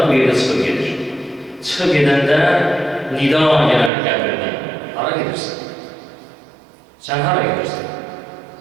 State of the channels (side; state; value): left; drops out; at 3.9 s